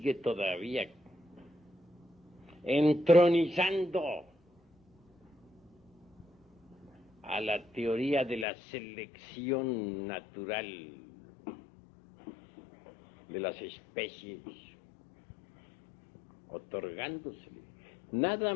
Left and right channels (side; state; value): right; drops out; at 8.5 s